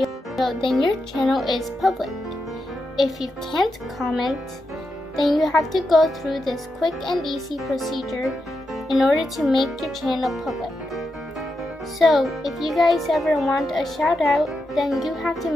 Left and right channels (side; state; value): both; normal; correlation 0.86